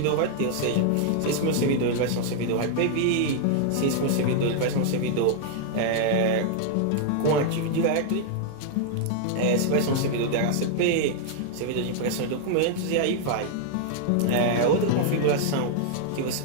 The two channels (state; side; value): different; both; correlation -0.01